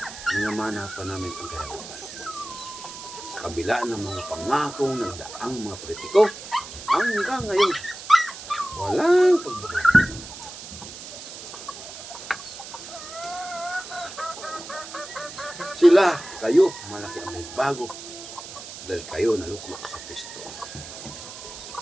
minamana pa namin ang kahirapan. Sa kabila ng mga pangakong nagdaang mga politiko, hanggang ngayon, walang pagbabago. Sila, kayo, malaki ang may bago dahil kayo naluklok sa pisto.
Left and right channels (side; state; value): right; noise; hiss, 12 dB below the sound